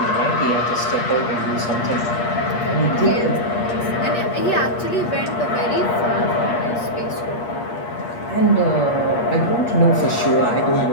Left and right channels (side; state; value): right; late; 8.4 ms